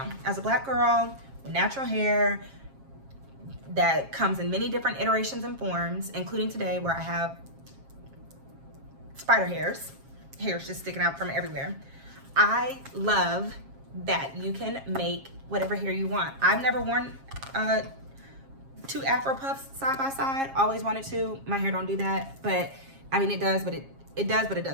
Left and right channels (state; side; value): late; left; 7.4 ms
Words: as a Black girl with natural hair that comes in many different iterations and forms, including today where I have spider hairs just sticking out from everywhere, I love that you can make whatever hair you want. I've never worn two Afro puffs side by side. Always wanted to. My hair don't do that, but I mean it does, but it does, but it